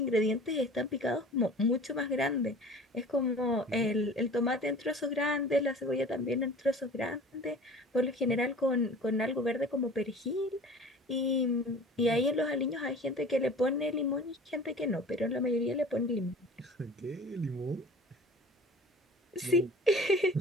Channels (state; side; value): normal; both; correlation 0.43